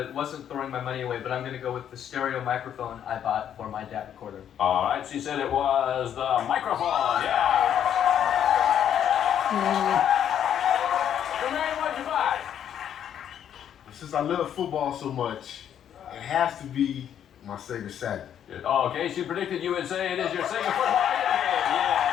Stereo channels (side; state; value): right; quieter; 9.6 dB